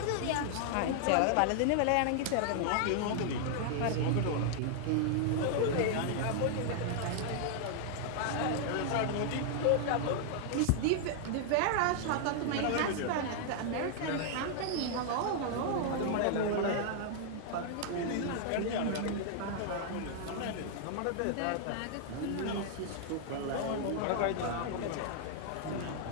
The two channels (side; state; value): both; different; correlation -0.01